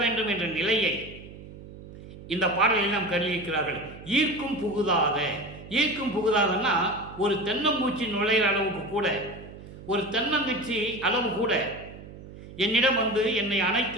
வேண்டும் என்ற நிலையை இந்த பாடலில் நாம் கருதியிருக்கிறார்கள். ஈர்க்கும் புகுதாதன்னா ஒரு தென்னம்பூச்சி நுழையிற அளவுக்கு கூட, ஒரு தென்னங்குச்சி அளவு கூட என்னிடம் என்னை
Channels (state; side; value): noise; right; hum, 16 dB below the sound